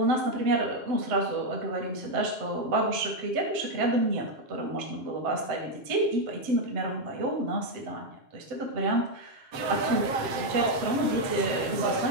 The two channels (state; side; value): late; left; 7.6 ms